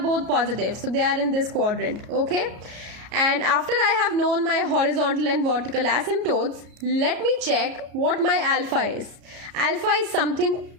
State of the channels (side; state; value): left; late; 33 ms